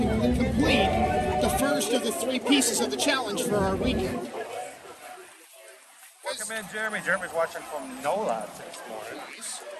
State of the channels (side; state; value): both; identical; correlation 1.00